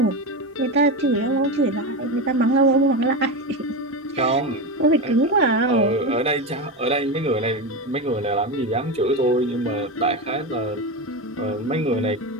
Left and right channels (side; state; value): both; normal; correlation 0.18